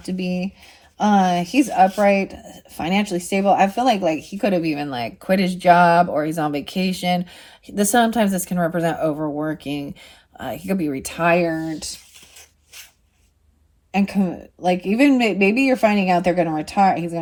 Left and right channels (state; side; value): identical; both; correlation 1.00